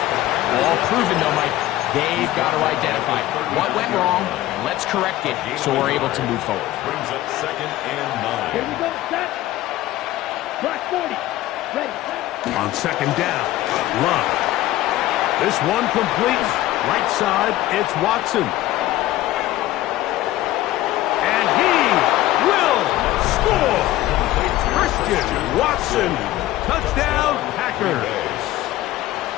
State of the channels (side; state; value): right; quieter; 15.5 dB